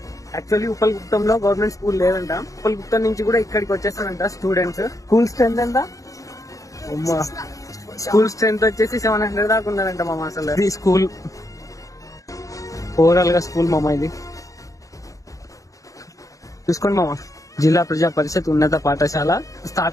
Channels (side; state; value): right; late; 0.16 ms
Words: యాక్చువల్లీ ఉప్పల్గుప్తంలో గవర్నమెంట్ స్కూల్ లేదంట. ఉప్పల్గుప్తం నుంచి కూడా ఇక్కడికి వచ్చేస్తారంట స్టూడెంట్స్. స్కూల్ స్ట్రెంత్ ఎంత? స్కూల్ స్ట్రెంత్ వచ్చేసి 700 దాకా ఉన్నారంట మామ. అసలు ఇది స్కూల్ ఓవరాల్ గా స్కూల్ మామ. ఇది చూసుకోండి మామ. జిల్లా ప్రజా పరిషత్ ఉన్నత పాఠశాల